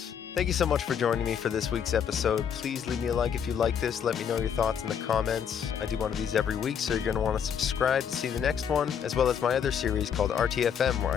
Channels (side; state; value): right; quieter; 7.9 dB